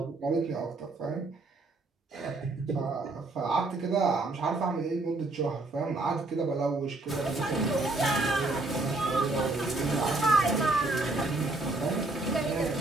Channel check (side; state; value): left; quieter; 3.1 dB